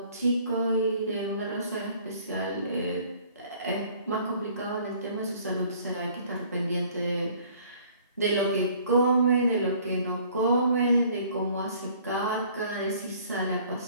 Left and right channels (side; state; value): both; inverted; correlation -0.56